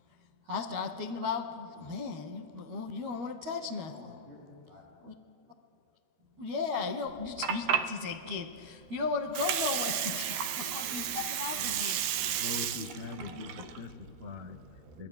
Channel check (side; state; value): left; late; 13 ms